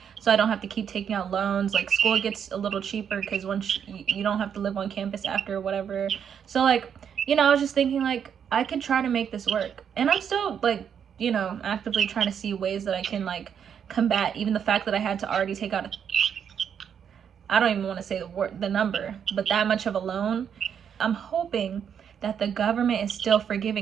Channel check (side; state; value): left; quieter; 8.0 dB